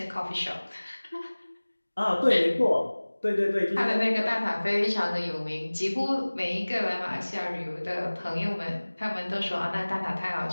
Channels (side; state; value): both; inverted; correlation -1.00